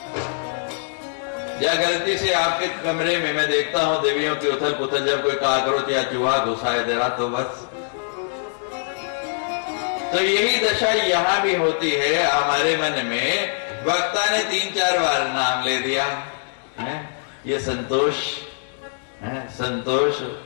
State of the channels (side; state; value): right; silent; 64 dB below the other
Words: या गलती से आपके कमरे में मैं देखता हूं देवियों की उथल पुथल, जब कोई काकरोच या चूहा घुसाए दे रहा तो बस। तो यही दशा यहां भी होती है हमारे मन में। वक्ता ने 3-4 बार नाम ले दिया है, ये संतोष है, संतोष,